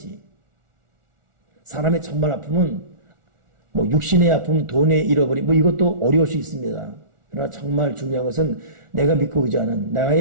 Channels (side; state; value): left; late; 1.4 ms